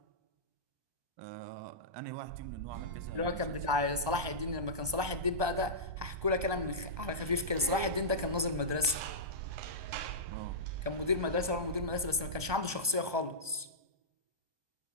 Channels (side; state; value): left; late; 1.2 ms